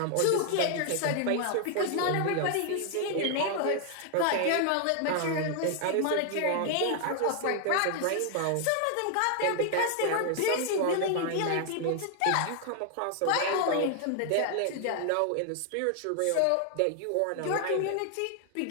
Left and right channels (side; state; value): both; different; correlation 0.00